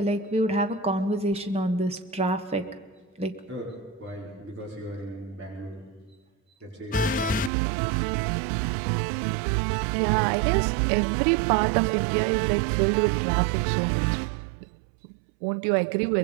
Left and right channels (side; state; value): left; drops out; at 7.5 s